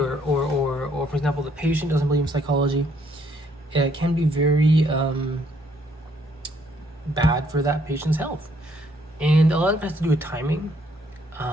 for example, the patient doesn't believe in psychology, it can be very bad for that patient's health. And a lot of it has to do with timing.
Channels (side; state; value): both; normal; correlation 0.68